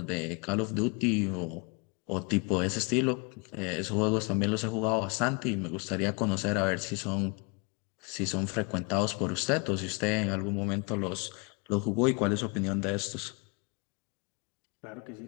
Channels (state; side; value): quieter; right; 32.0 dB